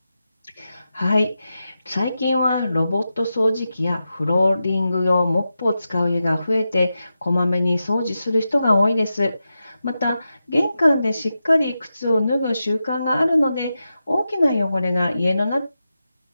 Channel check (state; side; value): inverted; both; correlation -0.90